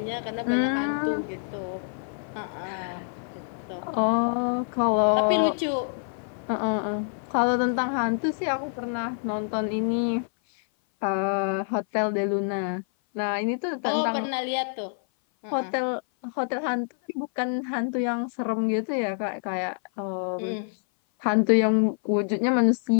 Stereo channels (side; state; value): right; silent; 57 dB below the other